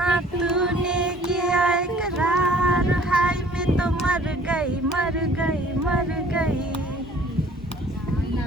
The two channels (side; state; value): both; normal; correlation 0.54